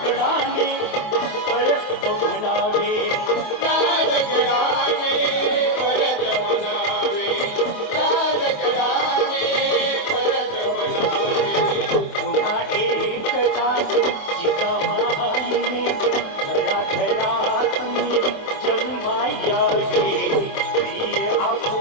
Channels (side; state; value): right; late; 27 ms